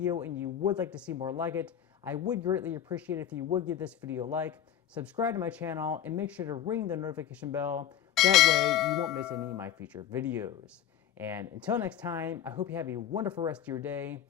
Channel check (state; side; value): quieter; right; 10.3 dB